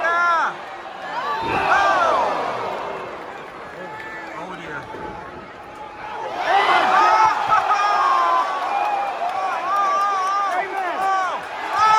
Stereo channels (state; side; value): identical; both; correlation 1.00